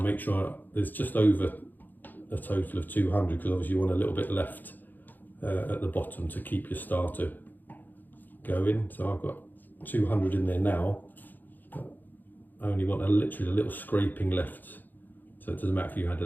make sure there's just over a total of 200, because obviously you want a little bit left at the bottom to keep your starter going. So I've got 200 in there now, but I only want literally a little scraping left, so it doesn't matter if you add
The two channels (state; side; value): late; right; 0.087 ms